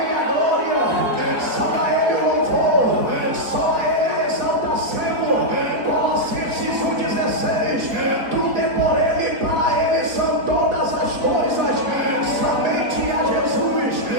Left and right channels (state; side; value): late; left; 4.2 ms